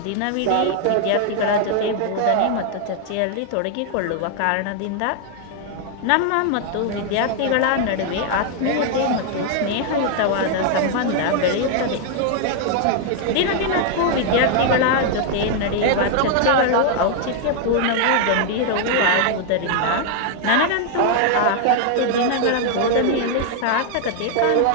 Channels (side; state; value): both; different; correlation 0.00